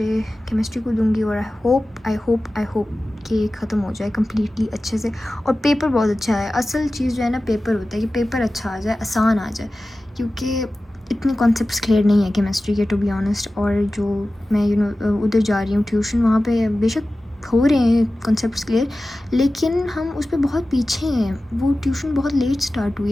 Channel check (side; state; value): both; normal; correlation 0.96